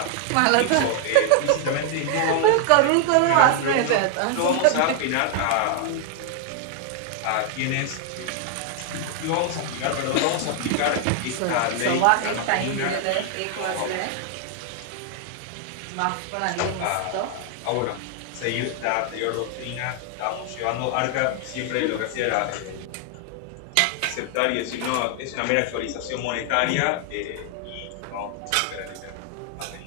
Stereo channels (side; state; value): both; different; correlation 0.00